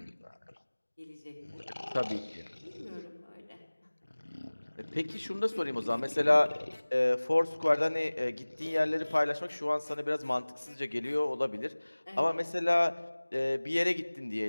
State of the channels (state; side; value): inverted; both; correlation -1.00